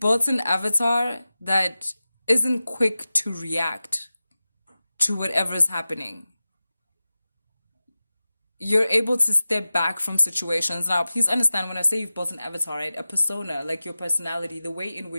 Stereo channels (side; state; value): both; inverted; correlation -0.96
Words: an avatar that isn't quick to react to whatever's happening. You're able to step back from situations. Now, please understand when I say you've built an avatar, right? A persona, like your personality, the way in